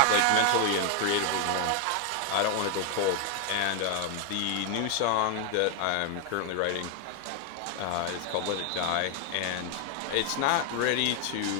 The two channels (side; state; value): both; different; correlation 0.00